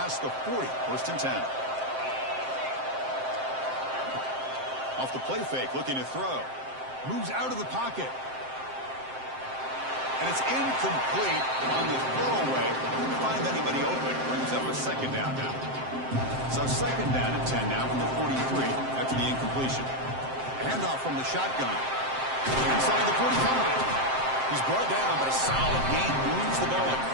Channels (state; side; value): late; left; 7.6 ms